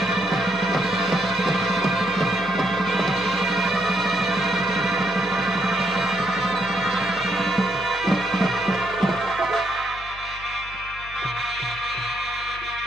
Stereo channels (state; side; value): noise; left; hum, 17 dB below the sound